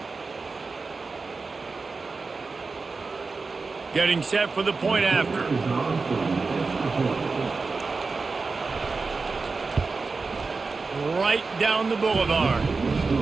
Getting set for the point after. Right down the boulevard.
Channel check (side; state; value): left; quieter; 4.2 dB